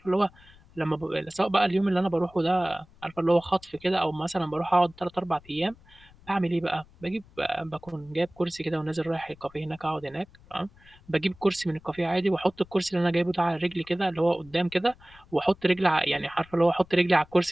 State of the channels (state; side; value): noise; left; rumble, 26 dB below the sound